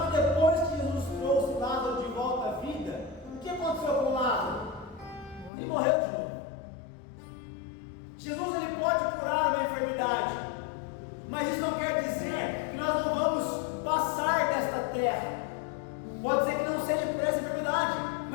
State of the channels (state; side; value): drops out; right; at 5.5 s